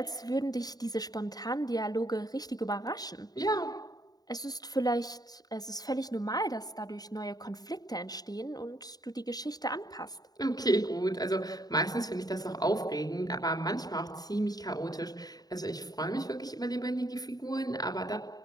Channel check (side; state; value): right; late; 0.19 ms